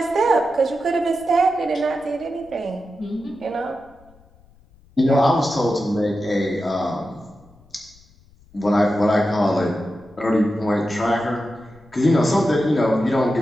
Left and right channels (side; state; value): left; noise; rumble, 28 dB below the sound